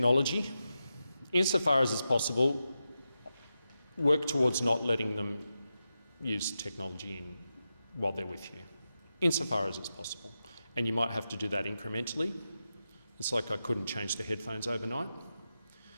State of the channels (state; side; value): inverted; both; correlation -0.90